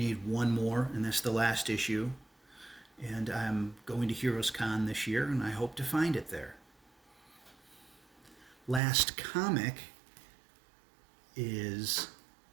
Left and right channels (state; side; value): drops out; left; at 8.8 s